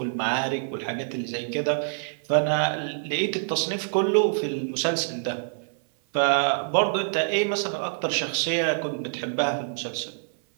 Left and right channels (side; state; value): left; silent; 59 dB below the other